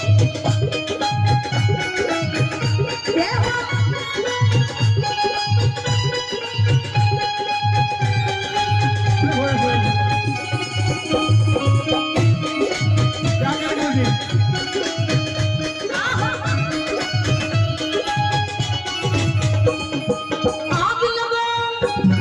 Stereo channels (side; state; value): both; identical; correlation 1.00